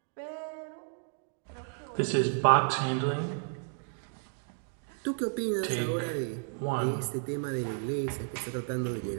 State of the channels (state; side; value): silent; left; 56 dB below the other